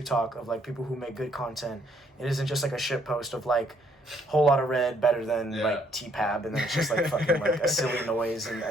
talk of, like, people who make good content. It isn't just, like, a shit post of, like, whole lot of red better than, like, T-Pab, and then it's just, like, fucking, like, a silly noise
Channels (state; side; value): normal; both; correlation 0.67